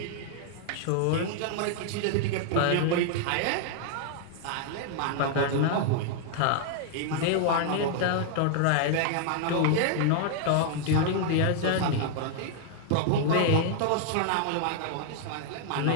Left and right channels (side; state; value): both; different; correlation -0.01